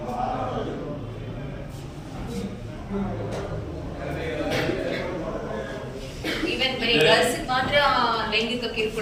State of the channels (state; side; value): identical; both; correlation 1.00